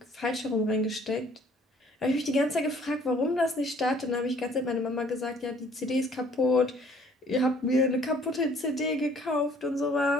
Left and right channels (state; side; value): normal; both; correlation 0.58